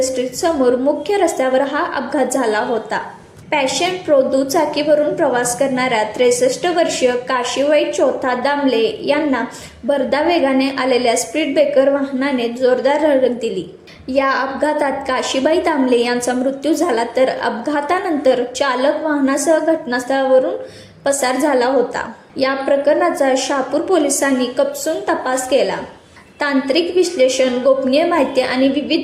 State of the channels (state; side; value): identical; both; correlation 1.00